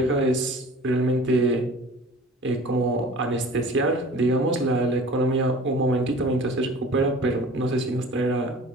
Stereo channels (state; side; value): normal; both; correlation 0.43